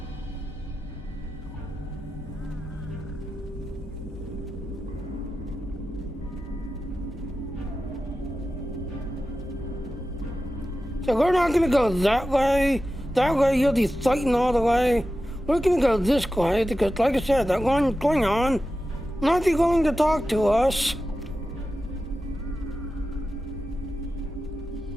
So we're not gonna go that way. That way you'll be fighting all the way. We're gonna go this way because, like I said, that one Klingon not be willing to talk to us.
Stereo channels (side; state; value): both; normal; correlation 0.92